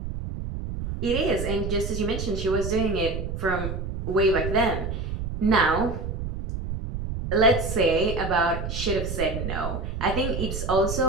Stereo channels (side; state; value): right; noise; rumble, 5 dB below the sound